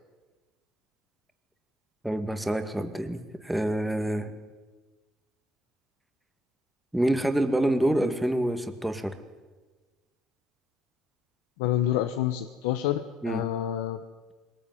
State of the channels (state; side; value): normal; both; correlation 0.68